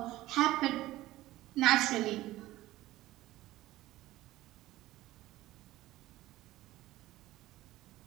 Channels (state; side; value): quieter; left; 16.5 dB